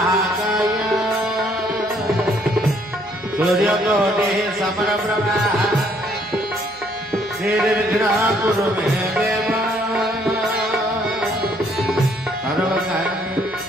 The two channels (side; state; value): left; noise; hum, 28 dB below the sound